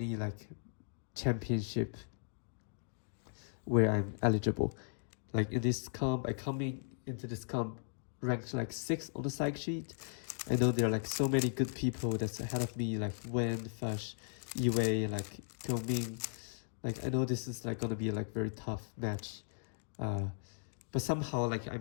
like championship. where I'm eligible. Like in this comp, I coming into this comp ranked like 6th on the psych sheet. I know there are like so many good people that's ahead of me, like Wen, Fush, Yue, like Ming. Like I know this is like gonna be like very tough match. But somehow like I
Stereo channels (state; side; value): silent; right; digital silence